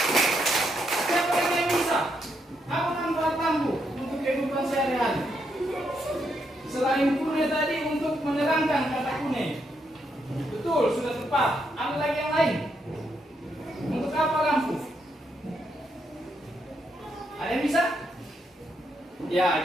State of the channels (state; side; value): normal; both; correlation 0.79